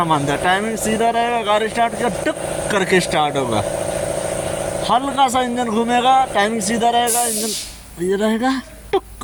मानता है, टाइमिंग सीधा रहेगा, गाड़ी स्टार्ट किया टुक करके स्टार्ट होगा। हल्का सा इंजन घूमेगा, टाइमिंग सीधा रहेगा, इंजन ये रहेगा, टुक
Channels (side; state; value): both; identical; correlation 1.00